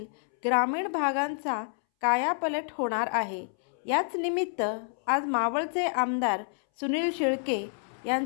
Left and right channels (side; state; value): right; silent; 59 dB below the other